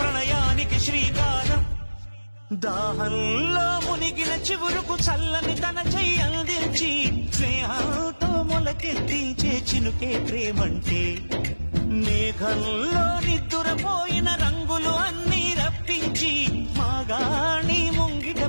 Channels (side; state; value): both; inverted; correlation -1.00